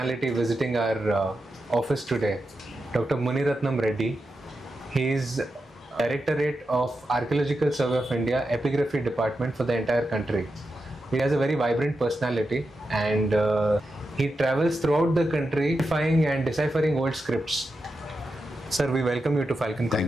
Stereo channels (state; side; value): normal; both; correlation 0.88